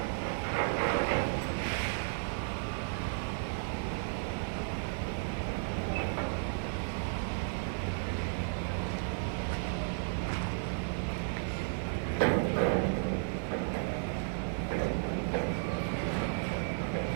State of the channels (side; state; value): left; silent; digital silence